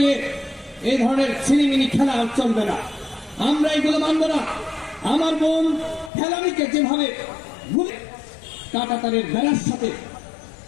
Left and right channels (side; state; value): right; drops out; at 6.1 s